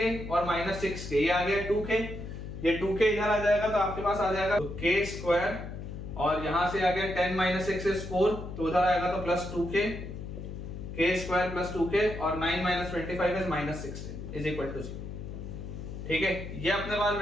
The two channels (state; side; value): noise; left; hum, 8 dB below the sound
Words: और माइनस 6k, ये आ गया 2k, ये 2k इधर आ जाएगा तो आपके पास आ जाएगा तो k स्क्वायर, और यहां से आ गया 10 माइनस 6 इज 4, तो उधर आएगा तो plus 2k, k square plus 2k और 9 minus 25 is minus 16 is equal to 0। ठीक है, ये अपने पास